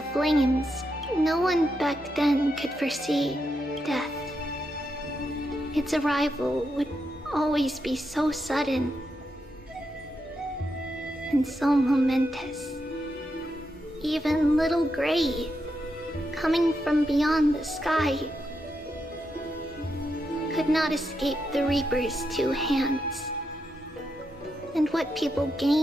flames, no one back then could foresee death. Its arrival would always be so sudden and so momentous. Even little Gray, coming from beyond the sky, could not escape the Reaper's two hands. And what people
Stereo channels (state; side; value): normal; both; correlation 0.84